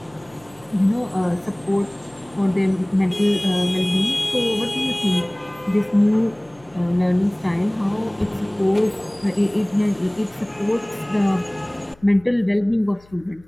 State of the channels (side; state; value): left; noise; hum, 27 dB below the sound